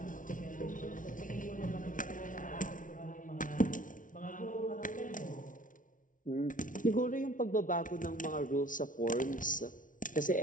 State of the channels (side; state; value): right; late; 0.38 ms